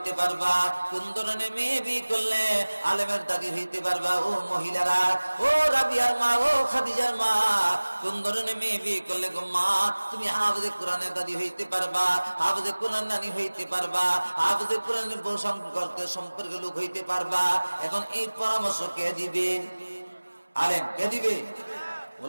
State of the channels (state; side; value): inverted; both; correlation -1.00